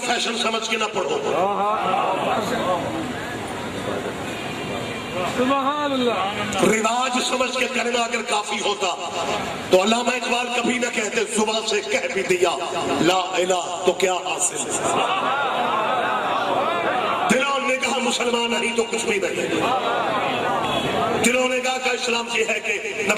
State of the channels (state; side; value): identical; both; correlation 1.00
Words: فیشن سمجھ کے نہ پڑھو۔ سبحان اللہ. رواج سمجھ کے کلمہ اگر کافی ہوتا تو علامہ اقبال کبھی نہ کہتے زبان سے کہہ بھی دیا لا الہ تو کیا حاصل. دلوں نے کہا مسلمان نہیں تو کچھ بھی نہیں. دلوں نے کہا کہ اسلام یہ ہے کہ